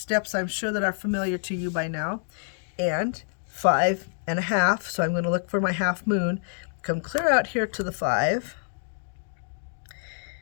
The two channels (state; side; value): silent; right; digital silence